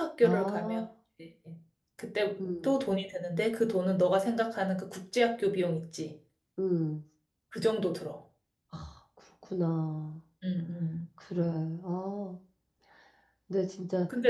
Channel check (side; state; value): both; identical; correlation 1.00